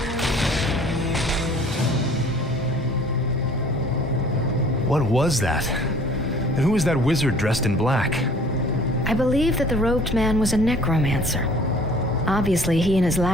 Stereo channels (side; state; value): both; normal; correlation 0.51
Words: What was that? And who was that wizard dressed in black? I believe that the robed man was a necromancer. Obviously, he and his